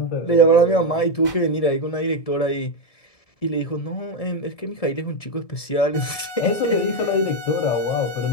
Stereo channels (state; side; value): late; right; 1.7 ms